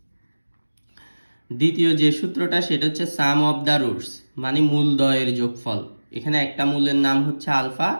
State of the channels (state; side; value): inverted; both; correlation -1.00